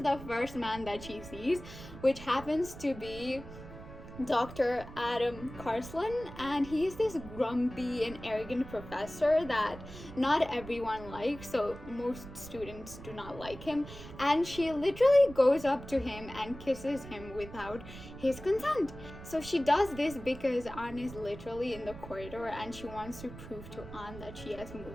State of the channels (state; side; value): noise; right; rumble, 14 dB below the sound